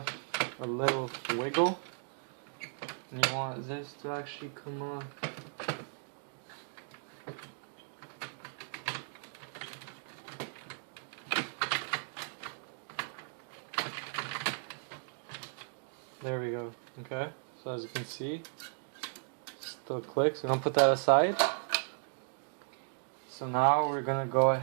little wiggle, and you want this to actually come off. There we go. Okay, so as you can see, still clicks. We're gonna put that aside. So now we're gonna go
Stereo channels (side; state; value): left; silent; digital silence